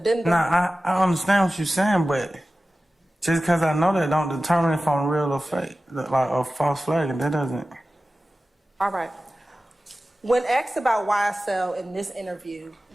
Nah, I understand what you're saying, but just because I know that don't determine if I'm real or fake, like a false flag, and that doesn't. All right. When asked about YSL in this interview,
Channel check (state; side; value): normal; both; correlation 0.95